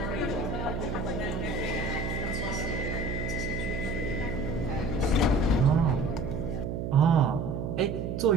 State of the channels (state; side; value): noise; right; hum, 3 dB below the sound